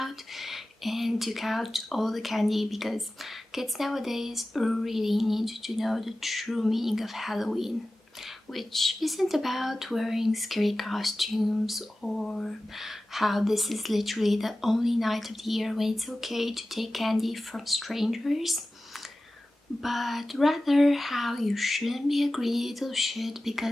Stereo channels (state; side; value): normal; both; correlation 0.96